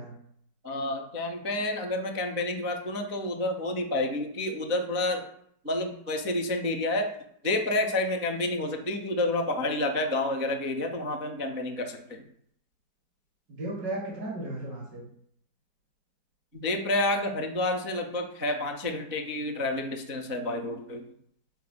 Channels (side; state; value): left; late; 4.1 ms